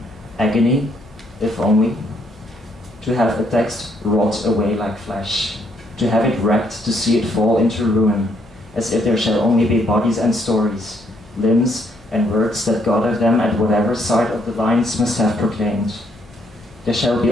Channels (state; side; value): noise; right; hum, 26 dB below the sound